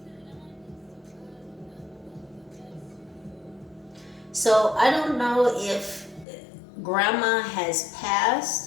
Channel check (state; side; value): drops out; right; at 6.2 s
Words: So I don't know if grandma has